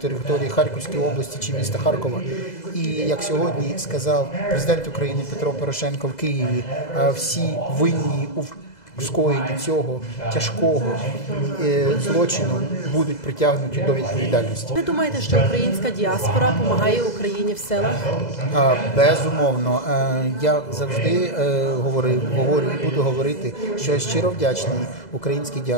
території Харківської області чи міста Харкова. І, як сьогодні сказав президент України Петро Порошенко в Києві, всі винні у скоєнні цього тяжкого злочину будуть притягнуті до відповідальності. Ви думаєте, що українська діаспора допомагає Україні в силах? Безумовно. Я завжди говорю і буду говорити, що я щиро вдячний українській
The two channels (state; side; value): late; right; 2.0 ms